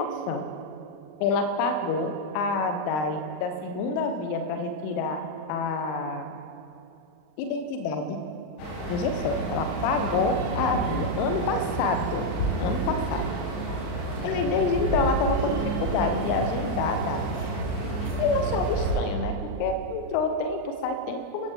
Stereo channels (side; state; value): right; late; 39 ms